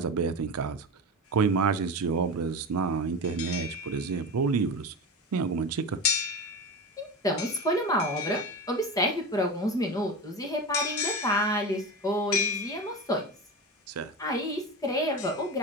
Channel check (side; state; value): both; normal; correlation 0.24